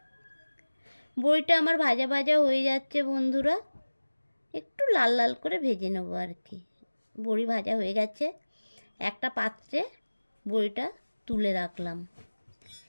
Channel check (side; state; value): both; inverted; correlation -1.00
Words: বড়িটা আমার ভাজা ভাজা হয়ে যাচ্ছে বন্ধুরা, একটু লাল লাল করে ভেজে নেবো আর কি। বড়ি ভাজা হয়ে গেছে, একটা পাত্রে বড়িটা তুলে রাখলাম।